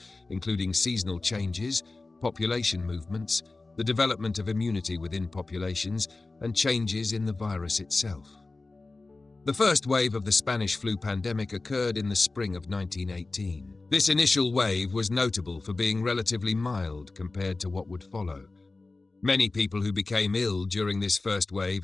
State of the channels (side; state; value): right; quieter; 3.4 dB